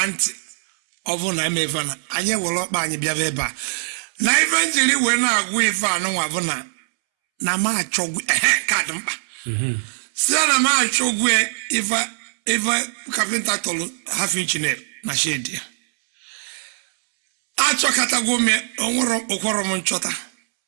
ntị ọ bụ na emeve na anyị were ọkpa anyị bịaba ebe a na ife njiri wee na-agwụ ife anụnwa bụ na ma achọgwu kaadị mkpa na ma achọgwu ife kapịnta tọrọ half inch na shedi ya achọkatagwo m onwere ụkwọrọ m nchọta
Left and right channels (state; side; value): silent; left; 65 dB below the other